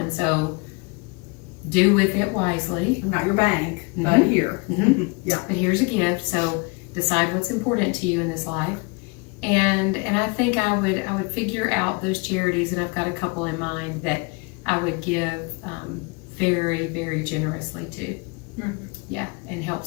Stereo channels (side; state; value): right; quieter; 29.8 dB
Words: So do with it wisely. I'm not your bank, but Mhm. here. Yeah. But here's a gift, so decide what's important to you in this life. And I think I would figure out those charities, and I've got a couple in mind that I would give very, very generously to. Yeah, and help